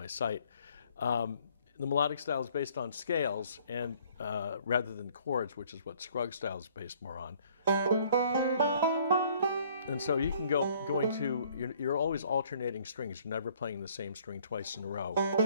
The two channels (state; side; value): inverted; both; correlation -0.60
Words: site. The melodic style is based on scales and rather than chords, which is what Scruggs style is based more on. And so you can you're always alternating strings. You're never playing the same string twice in a row.